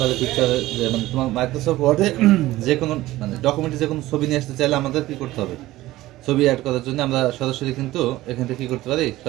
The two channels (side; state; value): left; quieter; 16.8 dB